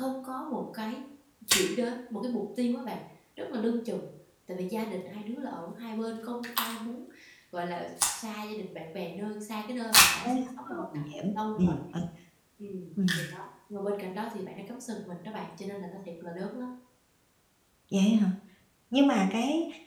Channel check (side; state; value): both; identical; correlation 1.00